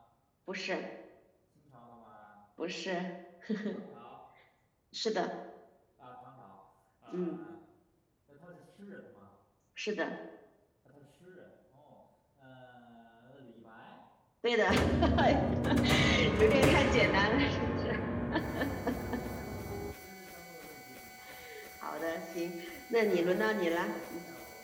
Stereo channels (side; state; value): both; identical; correlation 1.00